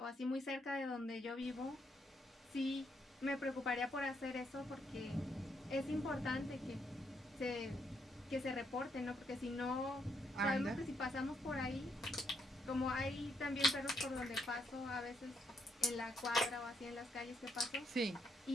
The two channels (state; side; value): normal; both; correlation 0.75